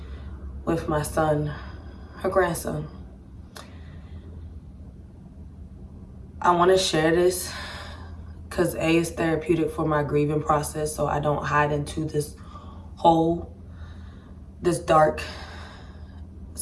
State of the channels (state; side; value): identical; both; correlation 1.00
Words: with my son, her grandson. I want to share this because A, is therapeutic for my grieving process, so I don't hide into this hole, this dark.